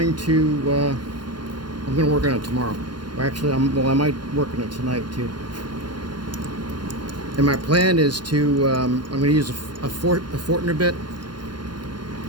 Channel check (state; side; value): late; left; 0.71 ms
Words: to work on it tomorrow. Or actually, I might work on it tonight too. And my plan is to I'm going to use a Fortner bit.